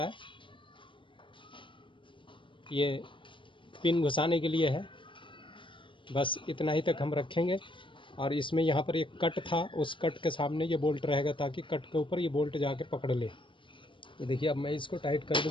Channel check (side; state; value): right; late; 0.24 ms